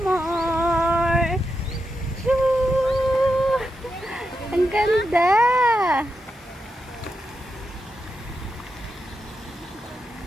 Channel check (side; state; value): both; normal; correlation 0.87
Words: more. Choo! Ang ganda.